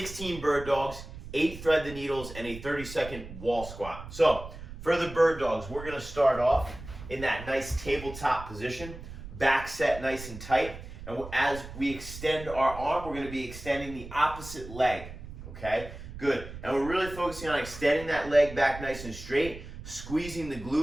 bird dogs, 8 thread the needles, and a 30-second wall squat. So for the bird dogs, we're going to start off in that nice tabletop position, back set nice and tight. And as we extend our arm, we're going to be extending the opposite leg, okay? Good. And we're really focusing on extending that leg back nice and straight, squeezing the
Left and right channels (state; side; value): noise; right; rumble, 13 dB below the sound